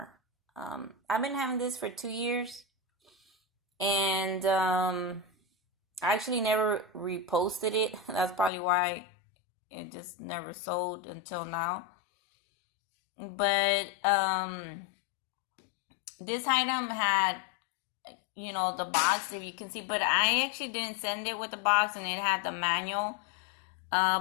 I've been having this for 2 years, and I actually never reposted it. That's probably why it just never sold until now. But this item had, the box, if you can see, but I actually didn't send it with the box, and it had the manual.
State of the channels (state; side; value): drops out; right; at 8.5 s